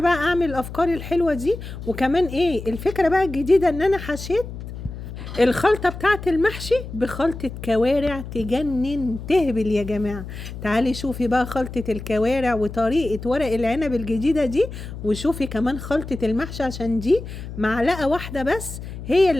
أعمل الأفكار الحلوة دي. وكمان إيه الفكرة بقى الجديدة؟ إن أنا حشيت الخلطة بتاعت المحشي بخلطة كوارع تجنن تهبل يا جماعة. تعالي شوفي بقى خلطة الكوارع وطريقة ورق العنب الجديدة دي، وشوفي كمان خلطة المحشي، عشان دي معلقة واحدة بس هي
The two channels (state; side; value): noise; left; hum, 10 dB below the sound